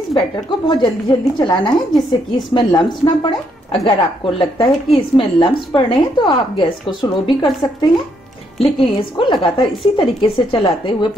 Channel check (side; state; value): both; normal; correlation 0.74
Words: बैटर को बहुत जल्दी जल्दी चलाना है जिससे कि इसमें लम्स ना पड़े। अगर आपको लगता है कि इसमें लम्स पड़ रहे हैं तो आप गैस को स्लो भी कर सकते हैं, लेकिन इसको लगातार इसी तरीके से चलाते हुए